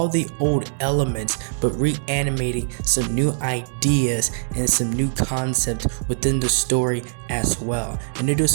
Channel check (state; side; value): silent; left; digital silence